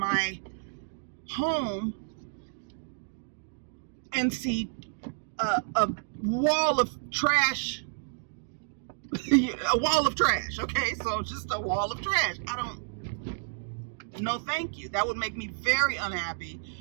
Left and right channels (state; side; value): silent; left; digital silence